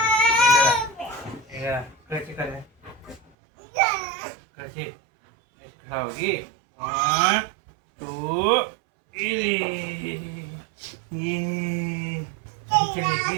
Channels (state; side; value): drops out; left; at 3.3 s